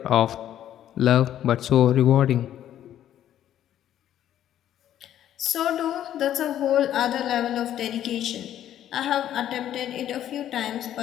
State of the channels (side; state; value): right; quieter; 11.3 dB